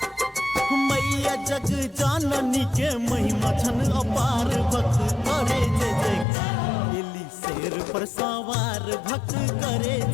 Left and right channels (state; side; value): drops out; right; at 6.2 s